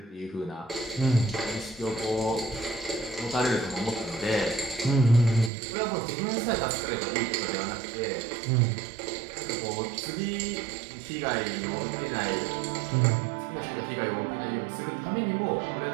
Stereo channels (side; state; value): left; drops out; at 5.5 s